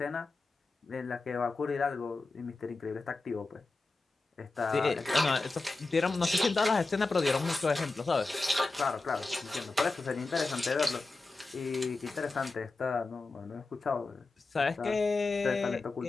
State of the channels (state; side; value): quieter; right; 3.5 dB